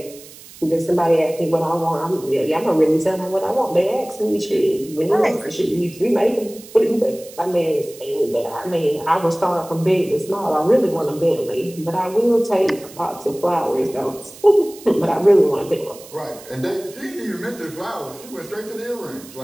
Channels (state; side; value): noise; right; hiss, 19 dB below the sound